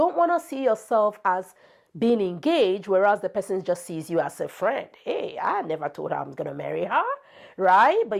want to see yourself as being engaged, whereas the person just sees you as a friend. Hey, I never told her I'm going to marry her, right? But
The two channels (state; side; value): identical; both; correlation 1.00